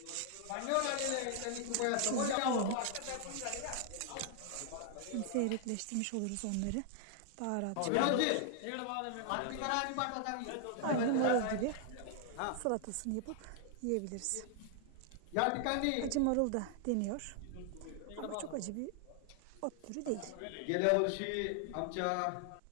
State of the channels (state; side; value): different; both; correlation 0.00